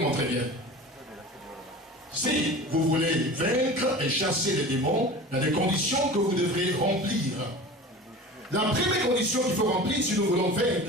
très bien. Si vous voulez vaincre et chasser les démons, il y a des conditions que vous devrez remplir. La première condition qu'il faut remplir si nous voulons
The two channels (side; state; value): both; normal; correlation 0.36